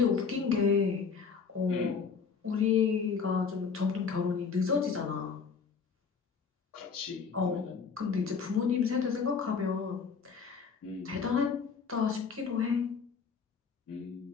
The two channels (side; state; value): right; quieter; 5.8 dB